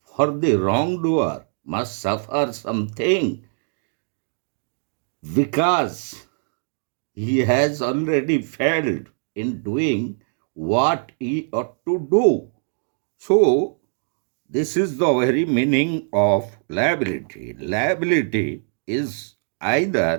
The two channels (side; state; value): left; silent; digital silence